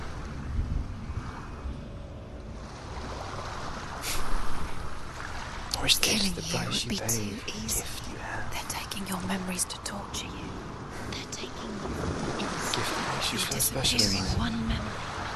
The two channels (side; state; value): both; identical; correlation 1.00